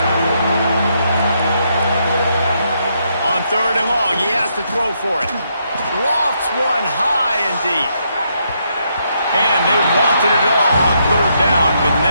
On 3rd and long, he has to throw for it. Lofts one high and deep. And they wanted it all on 3rd down, but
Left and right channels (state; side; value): inverted; both; correlation -0.77